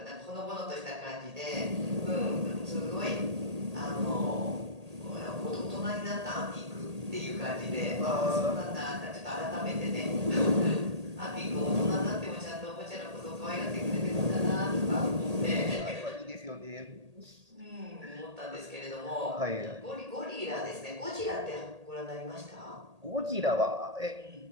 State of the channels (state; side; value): late; left; 1.8 ms